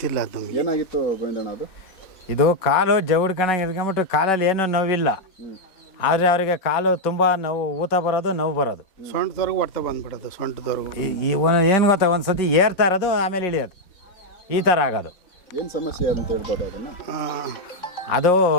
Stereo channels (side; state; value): right; late; 4.1 ms